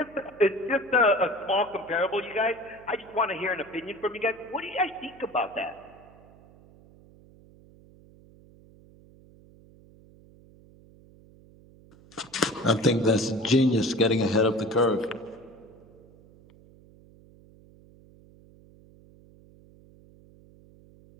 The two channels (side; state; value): right; noise; hum, 25 dB below the sound